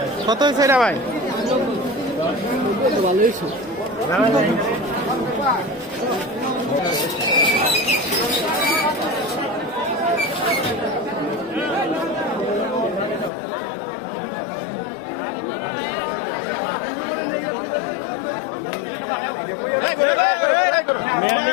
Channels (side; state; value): right; drops out; at 13.3 s